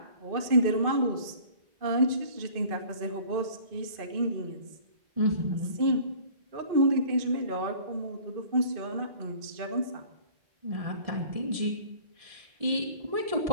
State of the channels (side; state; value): left; late; 2.5 ms